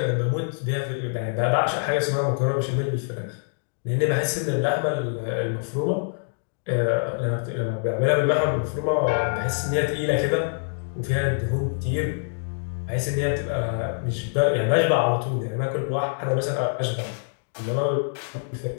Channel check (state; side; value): silent; right; digital silence